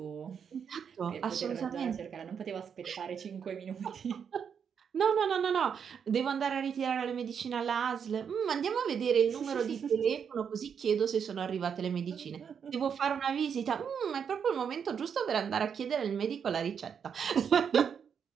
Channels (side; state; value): left; quieter; 7.2 dB